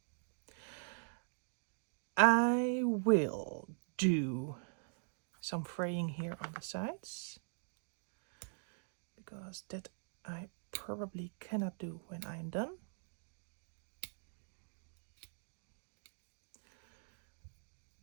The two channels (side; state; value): left; silent; digital silence